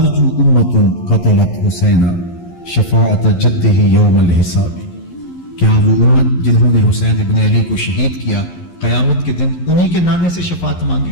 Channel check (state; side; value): late; right; 11 ms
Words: امت قتلت حسین شفاعت جدہ یوم الحساب، کیا وہ امت جنہوں نے حسین ابن علی کو شہید کیا قیامت کے دن انہی کے نانے سے شفاعت